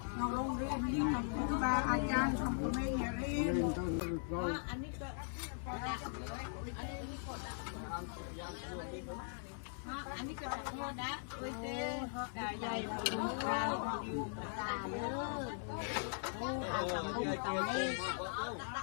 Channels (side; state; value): right; silent; 51 dB below the other